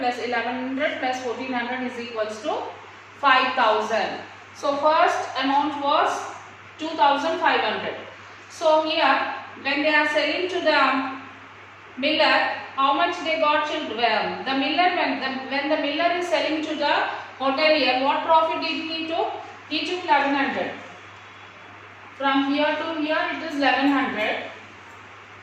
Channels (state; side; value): identical; both; correlation 1.00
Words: plus 1100 plus 1400 is equals to 5000. So first amount was 2500. So here when they are selling to the miller, how much they got? The miller, when the miller is selling to the hotelier, what profit did he took? He took 1100. From here to here it is 1100.